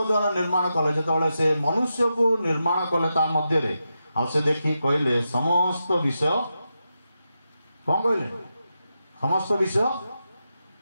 निर्माण कले। जेतळे से मनुष्य को निर्माण कले ता मध्य रे आ से देखि कहले समस्त विषय, कौन कहले? समस्त विषय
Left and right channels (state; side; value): inverted; both; correlation -0.88